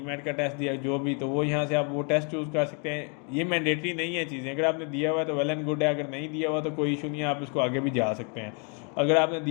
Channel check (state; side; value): quieter; right; 38.1 dB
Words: का टेस्ट दिया जो भी, तो वो यहाँ से आप वो टेस्ट चूज़ कर सकते हैं। ये मैंडेटरी नहीं है चीज़ें, अगर आपने दिया हुआ है तो वेल एंड गुड है, अगर नहीं दिया हुआ तो कोई इशू नहीं है, आप इसको आगे भी जा सकते हैं। अगर आपने